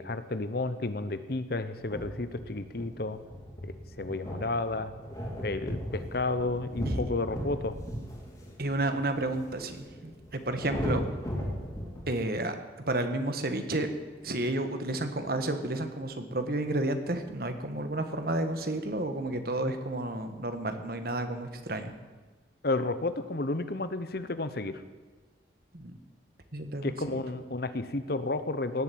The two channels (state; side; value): normal; both; correlation 0.35